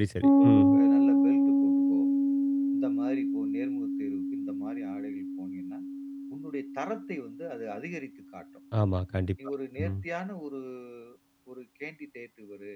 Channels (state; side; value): identical; both; correlation 1.00